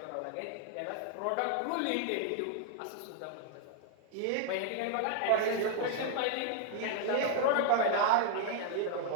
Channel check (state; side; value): different; both; correlation 0.00